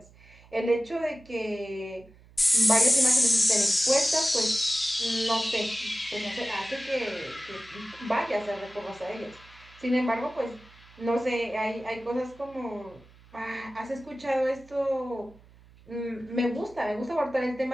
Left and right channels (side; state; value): right; noise; hum, 25 dB below the sound